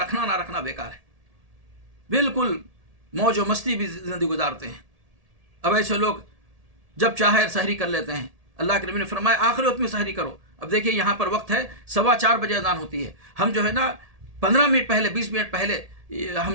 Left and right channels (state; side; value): late; left; 1.7 ms